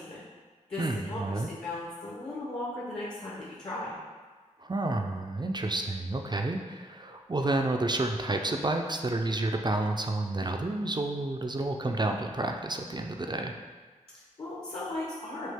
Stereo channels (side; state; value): both; normal; correlation 0.70